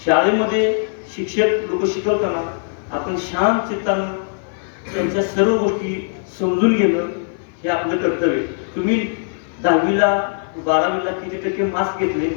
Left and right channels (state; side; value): silent; right; 57 dB below the other